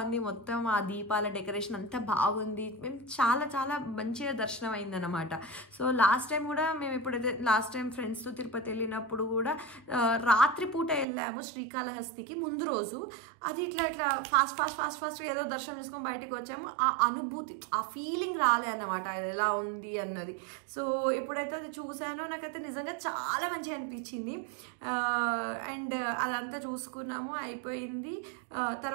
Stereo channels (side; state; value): left; drops out; at 11.1 s